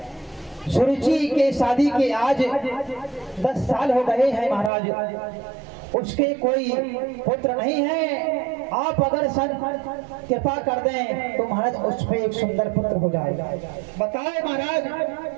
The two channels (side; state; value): left; drops out; at 4.7 s